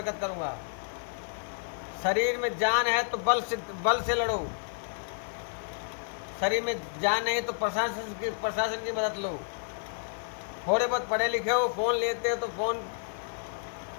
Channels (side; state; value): right; silent; digital silence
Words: करूँगा। शरीर में जान है तो बल से लड़ो। शरीर में जान नहीं तो प्रशासन की मदद लो। थोड़े बहुत पढ़े लिखे हो, फ़ोन लेते हो तो फ़ोन